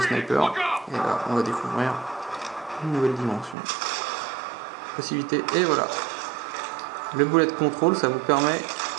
sniper. Et là on va découvrir une nouvelle dimension. Possibilité, et voilà. Le Bullet Control ça vous permet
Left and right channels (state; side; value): drops out; left; at 3.6 s